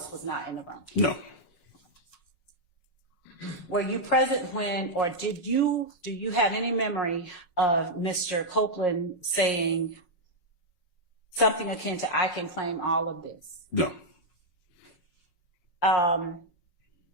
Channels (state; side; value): late; right; 5.5 ms